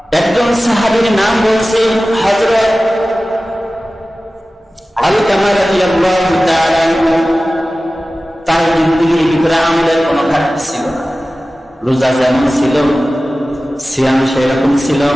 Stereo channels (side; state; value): both; normal; correlation 0.96